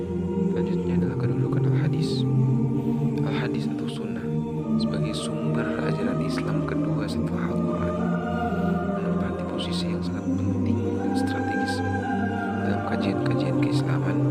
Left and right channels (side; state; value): both; identical; correlation 1.00